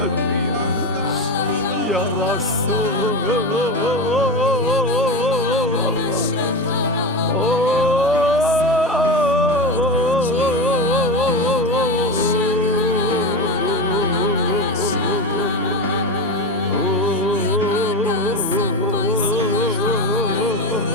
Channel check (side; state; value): both; normal; correlation 0.20